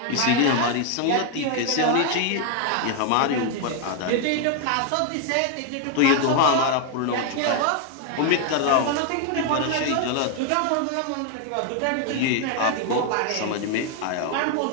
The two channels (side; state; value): both; different; correlation 0.00